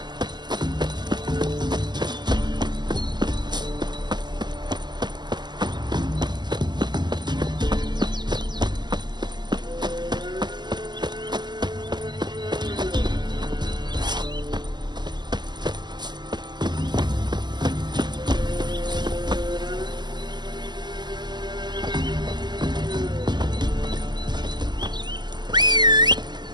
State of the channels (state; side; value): late; left; 0.21 ms